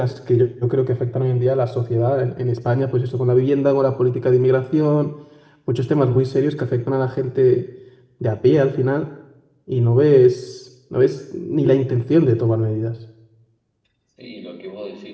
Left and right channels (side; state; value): both; identical; correlation 1.00